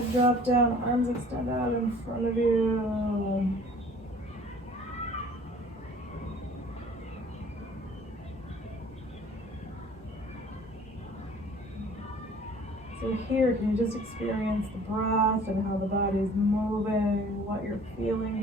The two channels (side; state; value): both; normal; correlation 0.51